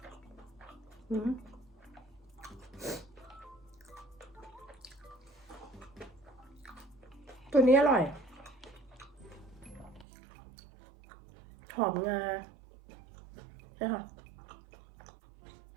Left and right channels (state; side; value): drops out; left; at 10.1 s